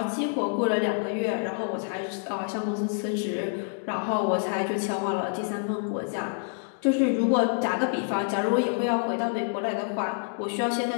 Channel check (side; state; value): right; silent; digital silence